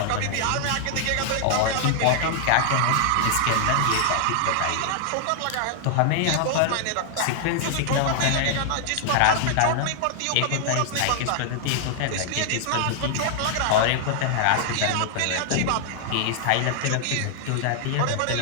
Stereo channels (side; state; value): both; different; correlation 0.00